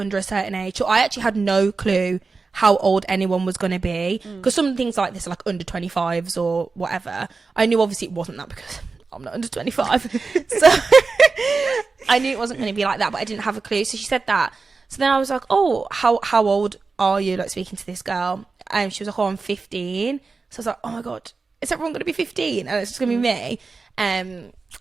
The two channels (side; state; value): left; quieter; 4.3 dB